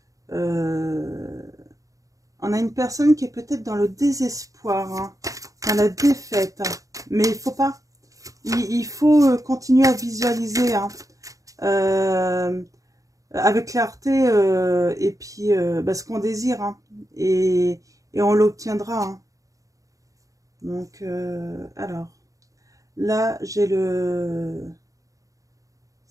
a une personne qui est peut-être dans le désespoir, hein, dans la défaite, hein. Mais il faut pas, il faut continuer à visualiser, hein, avec clarté, et puis bah, ce qu'on désire, hein, et on l'obtiendra, hein. Donc alors là j'ai le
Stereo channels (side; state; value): left; late; 0.16 ms